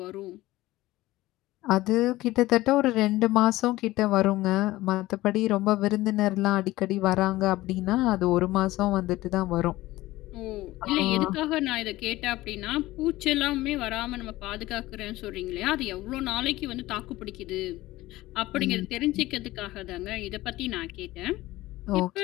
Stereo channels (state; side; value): quieter; right; 17.6 dB